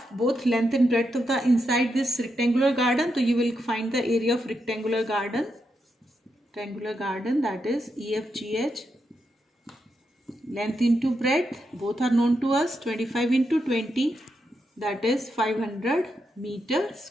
both length and breadth of the inside this rectangular garden. So you will find the area of rectangular garden. Rectangular garden, that is EFGH. Length into breadth, both are known to us. 25 into 20, that is 500 meter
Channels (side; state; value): both; normal; correlation 0.84